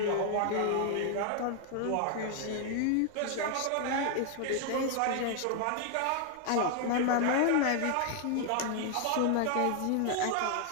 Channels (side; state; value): both; different; correlation 0.00